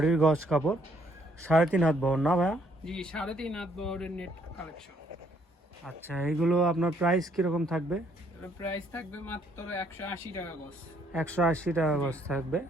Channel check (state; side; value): normal; both; correlation 0.67